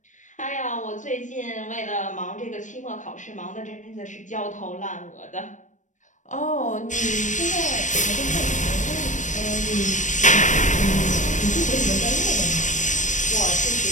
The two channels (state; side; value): late; right; 0.36 ms